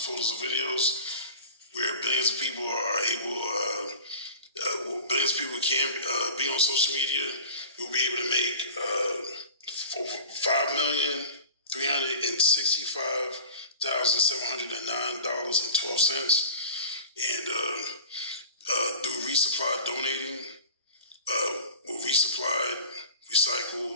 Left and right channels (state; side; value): inverted; both; correlation -0.37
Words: and videos, where billions of people are able, billions of people can be on social media, we'll be able to make $5,365,709.12. And through resupply donating, we'll resupply